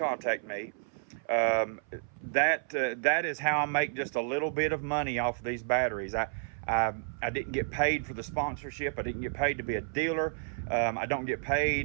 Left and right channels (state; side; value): silent; left; 57 dB below the other